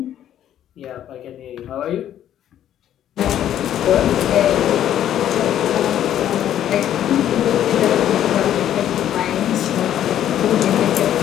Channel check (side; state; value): right; quieter; 11.1 dB